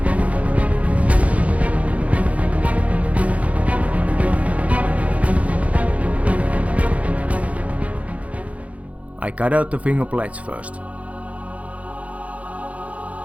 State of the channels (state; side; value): late; left; 0.066 ms